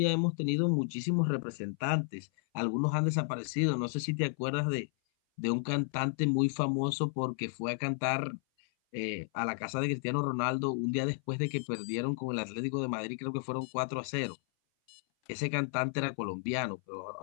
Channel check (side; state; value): right; silent; 56 dB below the other